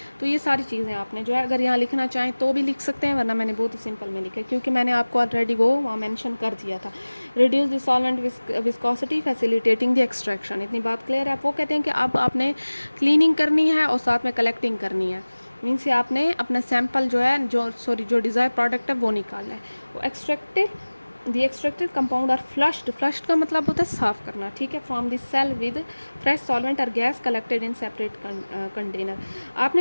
तो ये सारी चीज़ें आपने जो है अगर यहाँ लिखना चाहें तो भी लिख सकते हैं, वरना मैंने बहुत ही सिंपल में लिखा है क्योंकि मैंने आपको ऑलरेडी वो वहाँ मैंशन कर दिया था। Reduce the solvent viscosity facilitating the extraction, इतनी बात क्लियर है। वो कहते हैं कि अब आपने क्लीनिंग करनी है और साथ में कलेक्टिंग करनी है, मीन से आपने अपना सैंपल जो है जो डिज़ायर प्रोडक्ट है वो निकालना है। वो एक्सट्रैक्टेड कंपाउंड आर फ्लश्ड का मतलब होता है साफ़ करना, ठीक है, from the cell with fresh solvent और gas collected in separate container.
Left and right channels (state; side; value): inverted; both; correlation -1.00